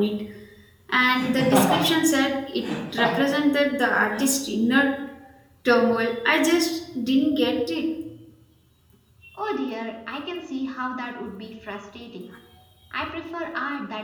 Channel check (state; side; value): identical; both; correlation 1.00